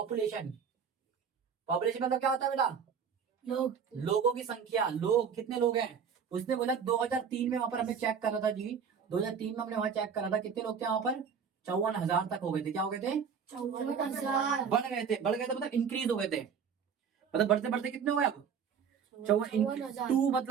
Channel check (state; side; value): quieter; left; 6.8 dB